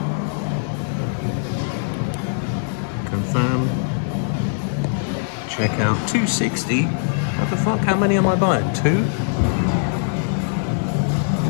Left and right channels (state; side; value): silent; right; 60 dB below the other